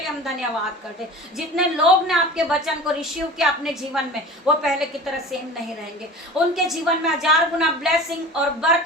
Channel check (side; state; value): both; normal; correlation 0.37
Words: हम धन्यवाद करते। जितने लोग ने आपके वचन को रिसीव किया अपने जीवन में, वो पहले की तरह सेम नहीं रहेंगे। उनके जीवन में 1000 गुना ब्लेसिंग और